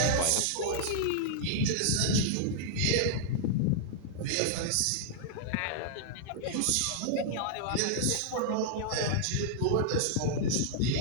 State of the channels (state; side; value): different; both; correlation -0.01